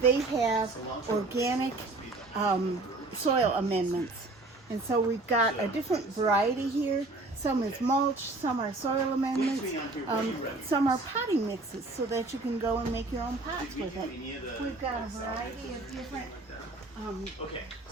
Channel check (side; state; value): left; quieter; 3.1 dB